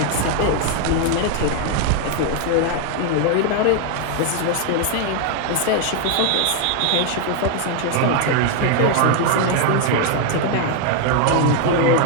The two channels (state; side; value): different; both; correlation 0.00